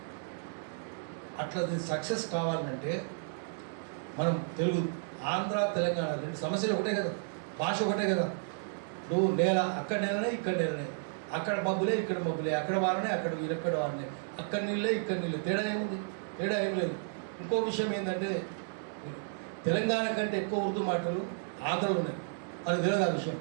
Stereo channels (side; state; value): left; silent; digital silence